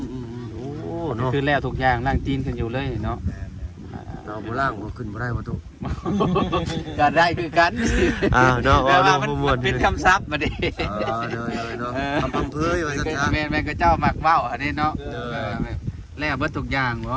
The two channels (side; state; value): both; identical; correlation 1.00